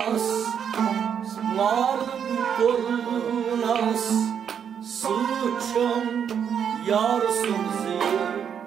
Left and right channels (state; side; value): quieter; left; 8.0 dB